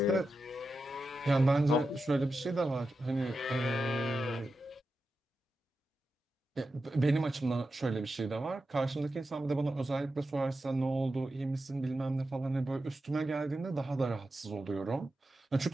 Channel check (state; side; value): normal; both; correlation 0.90